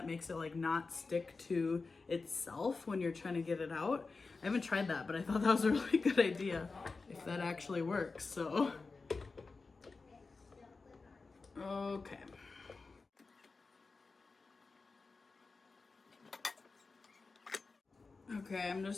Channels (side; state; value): right; quieter; 4.1 dB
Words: makes it like not stick to itself when you're trying to get it out. I haven't tried that, but I thought that was a really good idea if that actually works. So, okay. Okay, I'm